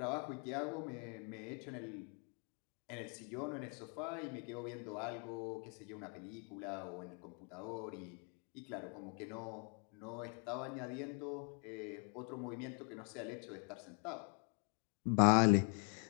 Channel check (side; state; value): right; quieter; 39.8 dB